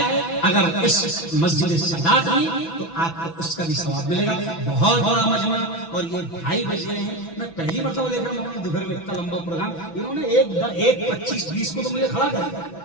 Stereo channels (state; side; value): late; right; 6.0 ms